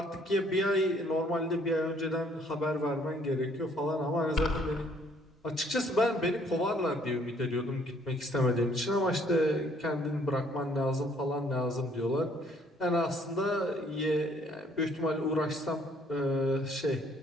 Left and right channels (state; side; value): normal; both; correlation 0.63